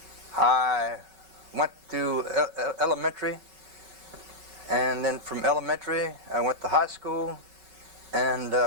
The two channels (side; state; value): left; late; 5.3 ms